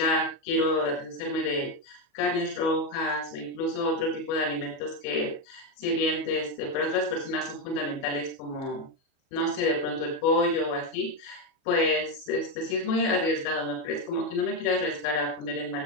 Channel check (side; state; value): right; late; 31 ms